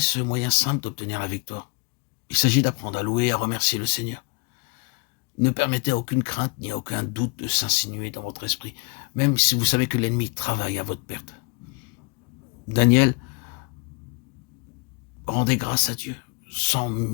moyen simple d'obtenir la victoire. Il s'agit d'apprendre à louer et à remercier le Seigneur. Ne permettez à aucune crainte ni à aucun doute de s'insinuer dans votre esprit, même si vous savez que l'ennemi travaille à votre perte. Daniel rendait grâce à Dieu, sans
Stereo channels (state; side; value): quieter; right; 30.5 dB